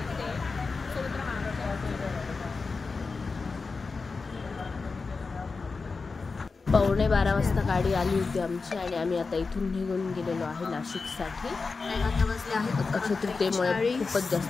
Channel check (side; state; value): right; quieter; 4.4 dB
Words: सोबत राहणार. 11:15 वाजता गाडी आली होती आमची आणि आम्ही आता इथून निघून गेलेलो आहे नाशिकसाठी. अक्षय तृतीयेमुळे खूपच